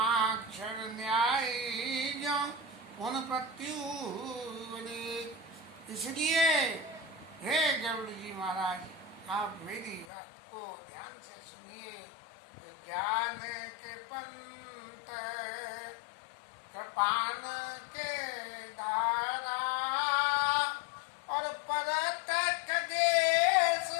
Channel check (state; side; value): drops out; right; at 10.1 s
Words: न्याय जो पुन प्रत्युवने। इसलिए हे गरुड़ जी महाराज, आप मेरी बात को ध्यान से सुनिए। ज्ञान के पंत कृपान के धारा और परत खगेश